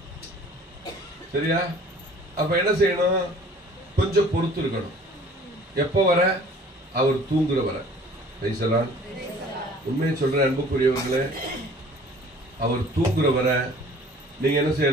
சரியா? அப்ப என்ன செய்யணும்? கொஞ்சம் பொறுத்து இருக்கணும். எப்ப வர? அவர் தூங்குற வர. உண்மையை சொல்ற அன்புக்குரியவர்களே, அவர் தூங்குற வர நீங்க என்ன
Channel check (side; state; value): both; normal; correlation 0.50